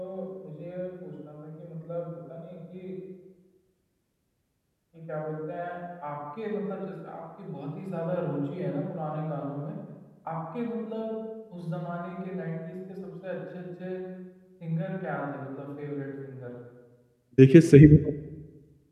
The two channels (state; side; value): identical; both; correlation 1.00